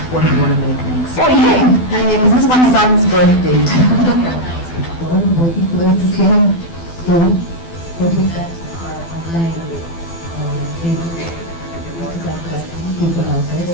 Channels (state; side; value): late; right; 12 ms